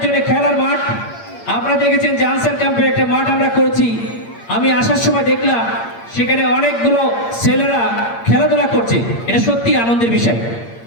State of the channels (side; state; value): right; late; 8.7 ms